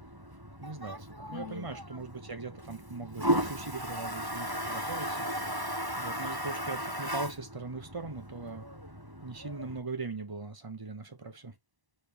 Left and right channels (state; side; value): late; left; 1.1 ms